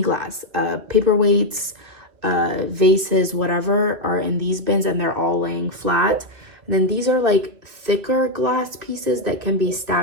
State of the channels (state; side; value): late; left; 2.4 ms